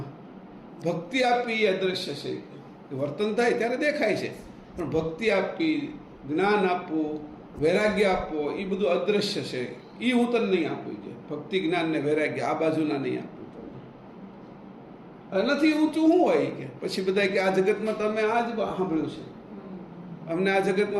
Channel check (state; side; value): identical; both; correlation 1.00